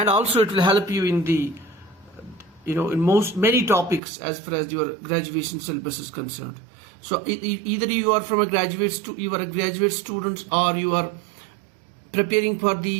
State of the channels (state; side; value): drops out; left; at 4.0 s